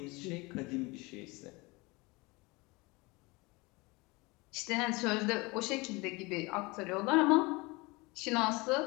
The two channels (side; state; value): right; quieter; 24.9 dB